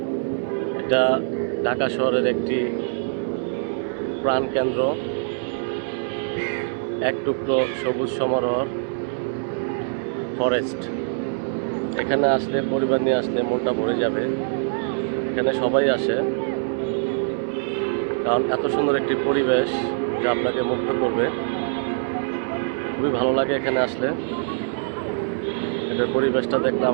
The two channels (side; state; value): left; silent; 63 dB below the other